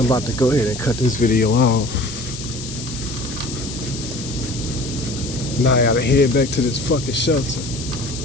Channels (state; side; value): noise; left; hiss, 10 dB below the sound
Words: about to go ahead and cut this video off. Now I gotta head back to this fucking shelter.